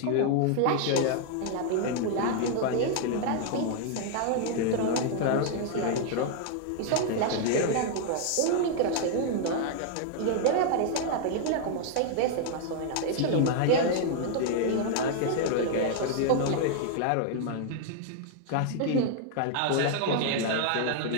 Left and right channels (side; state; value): both; different; correlation 0.00